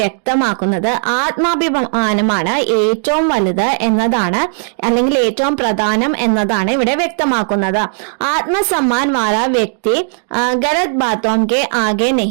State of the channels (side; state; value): left; silent; digital silence